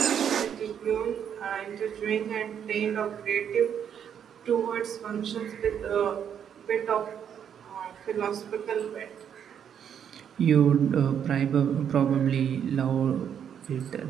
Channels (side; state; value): left; quieter; 8.5 dB